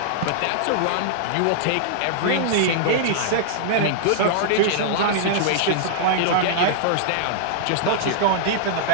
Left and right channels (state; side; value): different; both; correlation -0.01